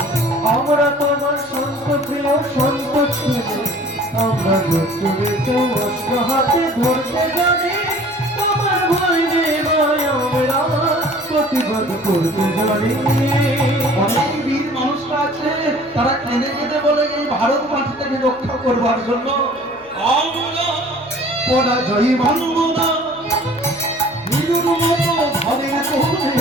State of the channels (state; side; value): noise; left; hum, 30 dB below the sound